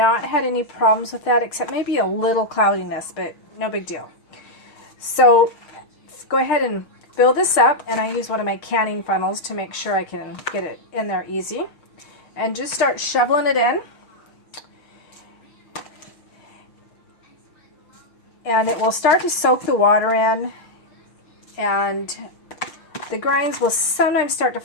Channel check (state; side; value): late; right; 6.5 ms